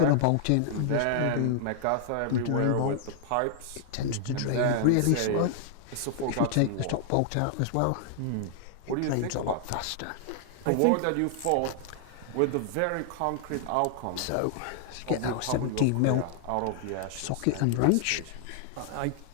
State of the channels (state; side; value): different; both; correlation -0.01